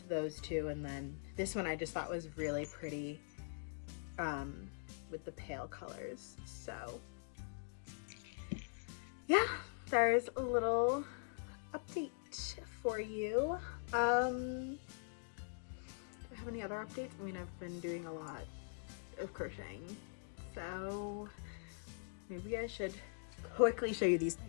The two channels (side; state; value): right; silent; digital silence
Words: those two, and then this one I just thought was really pretty with the pale colors. So yeah, there's a little update for you. Do I have any other updates? I mean, I've been doing a lot of crocheting, so maybe I should quickly show you these